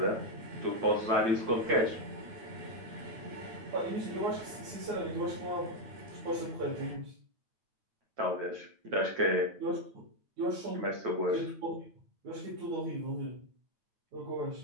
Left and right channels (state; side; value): late; left; 9.0 ms